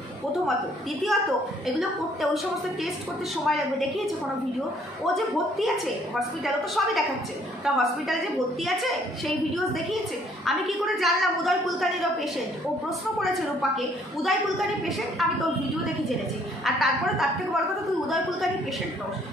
প্রথমত। দ্বিতীয়ত, এগুলো করতে, ওই সমস্ত টেস্ট করতে সময় লাগবে। দেখিয়েছে কোনো ভিডিও? ও যে ভর্তি আছে হসপিটালে, তো সবই দেখাচ্ছে, তা হসপিটালে যে ভর্তি আছে সেই ভিডিওস দেখিয়েছে। আমি কি করে জানলাম উদয় কুলকার্নিরও পেশেন্ট? ও প্রশ্ন করেছে রূপাকে, উদয় কুলকার্নি পেশেন্ট, আমি তোর ভিডিও দেখে জেনেছি। আর তারপরে তার থেকে বড় কথা, তুই উদয় কুলকার্নি পেশেন্ট নস,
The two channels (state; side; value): normal; both; correlation 0.63